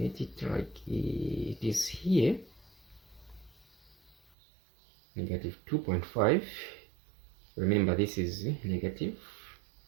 it like it is here. -2.5. Remember, this is negative.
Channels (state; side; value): drops out; left; at 4.2 s